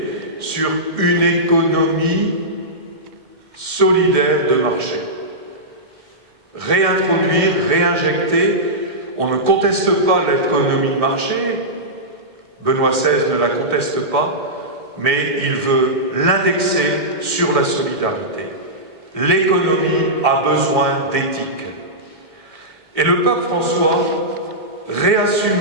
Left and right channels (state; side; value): late; left; 1.9 ms